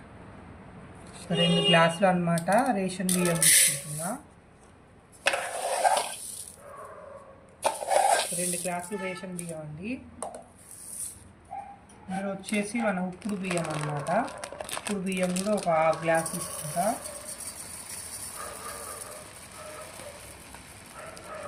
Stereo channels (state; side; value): identical; both; correlation 1.00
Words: 2 గ్లాసులు అనమాట రేషన్ బియ్యం తీసుకుంటున్నా. 2 గ్లాసులు రేషన్ బియ్యం అండి. ఇందులో వచ్చేసి మన ఉప్పుడు బియ్యం అనమాట. ఉప్పుడు బియ్యం కూడా ఒక 1/2 గ్లాస్ తీసుకుంటా.